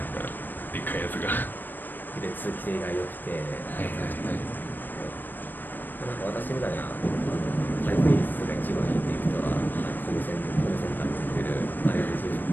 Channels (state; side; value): late; right; 0.091 ms